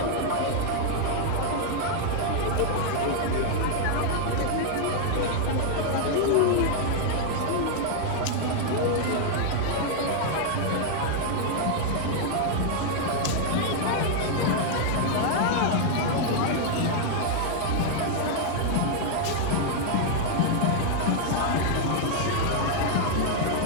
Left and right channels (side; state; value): both; different; correlation 0.00